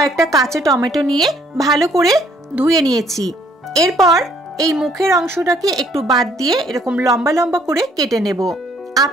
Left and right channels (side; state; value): both; normal; correlation 0.63